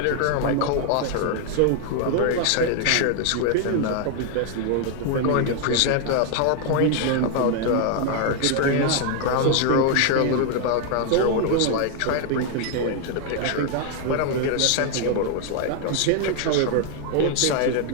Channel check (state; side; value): different; both; correlation 0.00